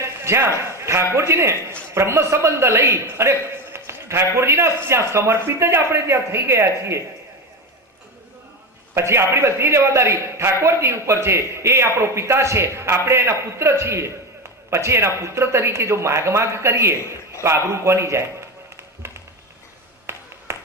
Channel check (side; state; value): both; normal; correlation 0.19